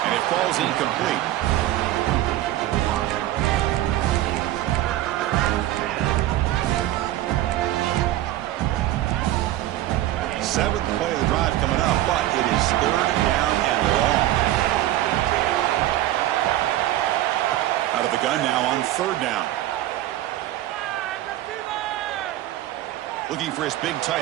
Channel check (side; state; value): left; quieter; 14.6 dB